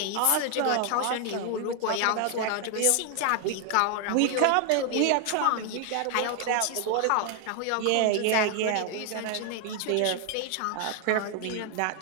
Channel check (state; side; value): different; both; correlation 0.00